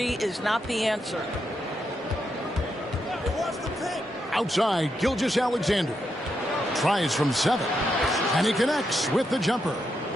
is not the answer. Outside, Gilgeous-Alexander. Tries from 7. And he connects with the jumper.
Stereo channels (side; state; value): both; normal; correlation 0.82